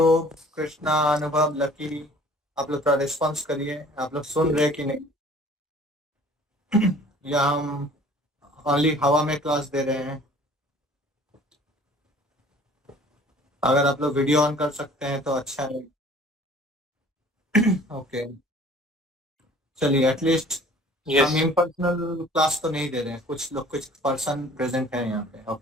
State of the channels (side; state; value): both; normal; correlation 0.51